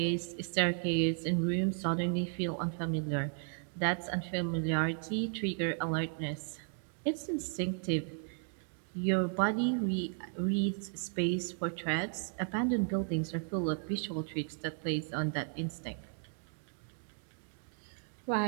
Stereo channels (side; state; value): left; silent; 55 dB below the other